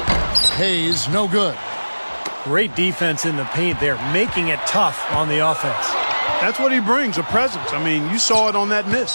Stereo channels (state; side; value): inverted; both; correlation -1.00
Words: Hayes, no good. Great defense in the paint there, making it tough on the offense. That's what he brings, a presence. I mean, you saw it on that